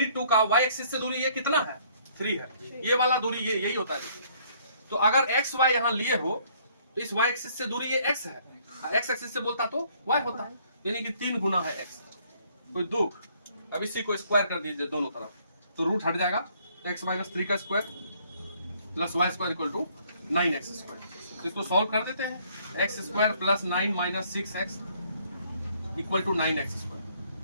का y एक्सिस से दूरी ये कितना है? 3 है, ये वाला दूरी ये यही होता है। तो अगर x y यहाँ लिए हो तो इस y एक्सिस से दूरी ये x है, x एक्सिस से बोलता तो y होता, यानी कि 3 गुना है x। कोई दुख? अब इसी को स्क्वायर कर दीजिए दोनों तरफ, तो रूट हट जाएगा, तो x - 3 का square plus y square equal to 9x square. तो इसको सॉल्व कर देते हैं, x square plus 9 - 6x equal to 9x square.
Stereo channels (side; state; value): both; inverted; correlation -0.63